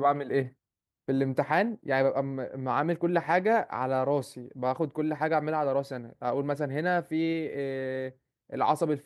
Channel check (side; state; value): both; identical; correlation 1.00